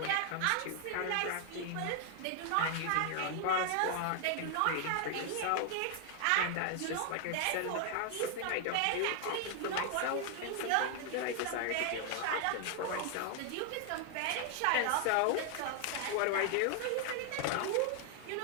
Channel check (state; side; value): different; both; correlation 0.00